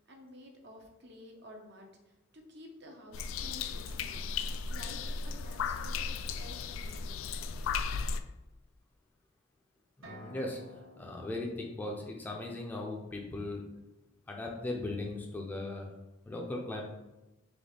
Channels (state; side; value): quieter; right; 3.6 dB